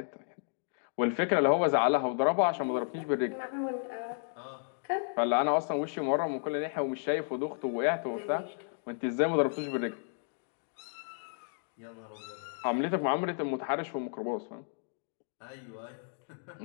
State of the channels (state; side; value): silent; right; digital silence